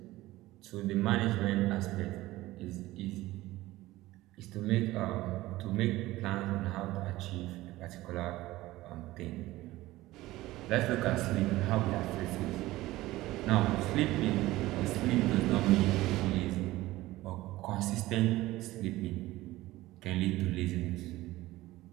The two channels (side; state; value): left; quieter; 17.6 dB